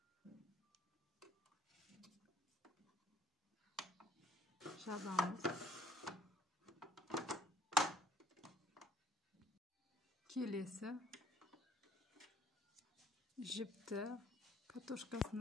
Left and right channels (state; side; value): normal; both; correlation 0.60